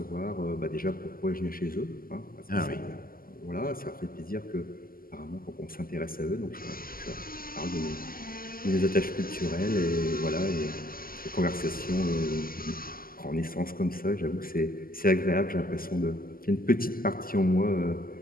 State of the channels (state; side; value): late; right; 0.42 ms